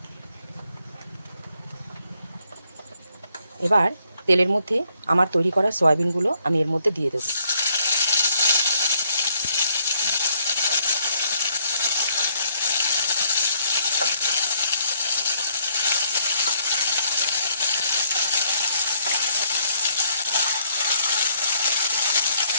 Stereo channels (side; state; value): both; inverted; correlation -0.69